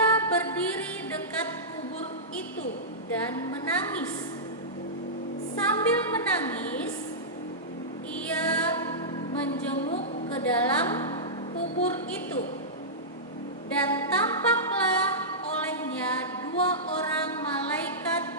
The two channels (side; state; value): both; normal; correlation -0.15